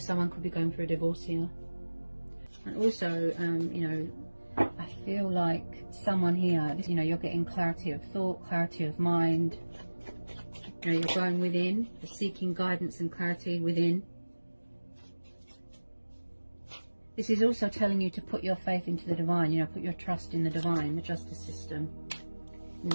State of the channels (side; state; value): both; inverted; correlation -1.00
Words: could be going through a divorce here. And also, you know, I feel like someone here, you know, you're getting clarity of thought, clarity of mind. You know, you're going within, you're seeking guidance and clarity within. This is also telling you to put your faith into the divine, you know, put your trust in the divine, the justice system. You